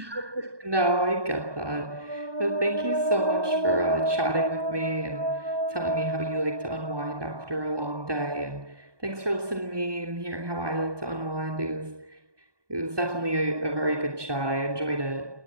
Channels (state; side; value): late; left; 1.2 ms